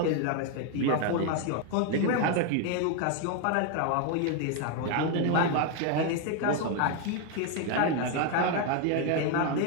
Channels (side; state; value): both; different; correlation 0.01